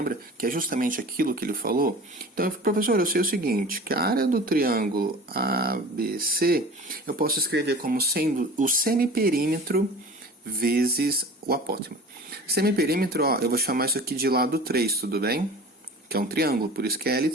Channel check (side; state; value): both; normal; correlation 0.39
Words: Que é justamente aquilo que ele falou. Então, professor, eu sei o seguinte, que a área do triângulo ABC, eu posso escrever como sendo o semiperímetro vezes o apótema. Semiperímetro, ó, eu vou chamar isso aqui de lado 3, tudo bem? Que é um triângulo, por isso que é